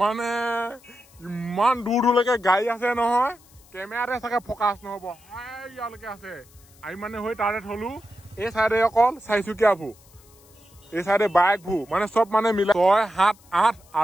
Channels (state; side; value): noise; left; hiss, 27 dB below the sound